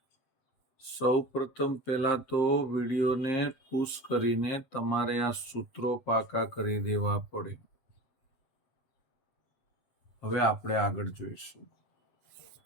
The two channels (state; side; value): late; right; 7.5 ms